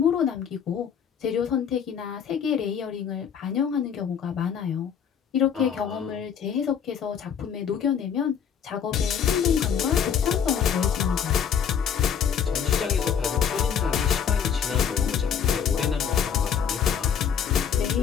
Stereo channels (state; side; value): quieter; right; 7.7 dB